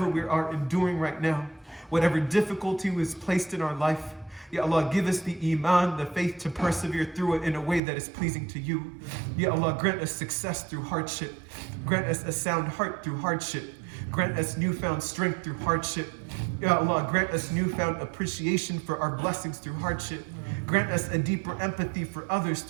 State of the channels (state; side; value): drops out; left; at 7.8 s